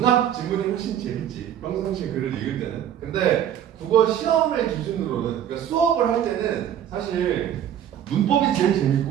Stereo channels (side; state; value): left; quieter; 10.0 dB